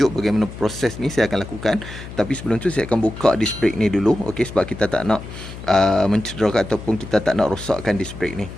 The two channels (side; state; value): left; noise; hum, 12 dB below the sound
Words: bagaimana proses ni saya akan lakukan. Tapi sebelum tu saya akan buka disc brake ni dulu, okey, sebab kita tak nak mencederakan ataupun kita tak nak rosakkan disc brake ni.